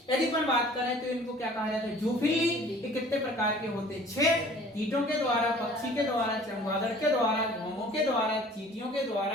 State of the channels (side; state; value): both; normal; correlation 0.50